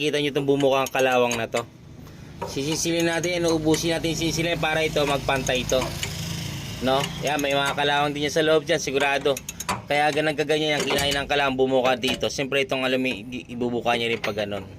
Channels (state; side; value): identical; both; correlation 1.00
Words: nyo itong bumukang kalawang na to. Sisisilin natin, inuubusin natin sisilin para ito magpantay ito. No? Yan, may mga kalawang din yan sa loob dyan, sigurado. Kaya ganang kaganyan yung kinain ng kalawang bumuka dito. Siyempre itong ibubuka niya rin pag ganun.